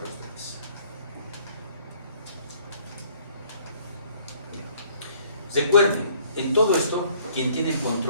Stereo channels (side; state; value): both; inverted; correlation -0.59